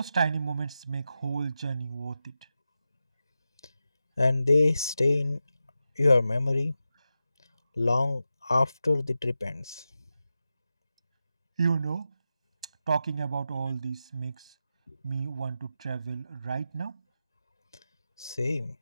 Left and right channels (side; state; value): both; inverted; correlation -0.91